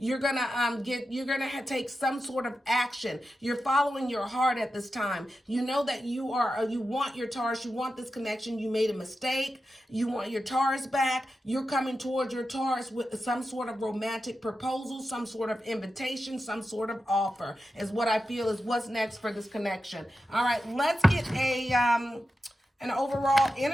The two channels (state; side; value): normal; both; correlation 0.91